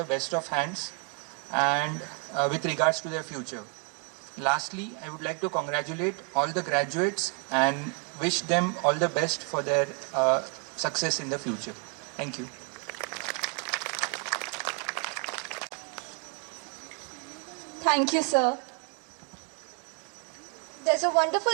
best of hands and with regards to their future. Lastly, I would like to congratulate all the graduates and wish them all the best for their success in the future. Thank you. Thank you, sir. There's a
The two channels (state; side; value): quieter; left; 35.1 dB